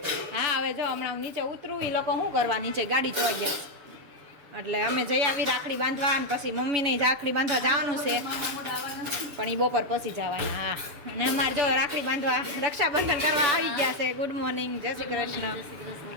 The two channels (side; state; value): left; late; 7.0 ms